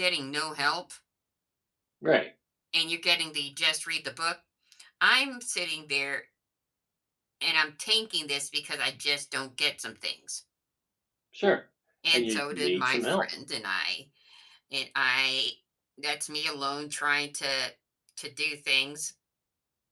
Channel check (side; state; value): both; identical; correlation 1.00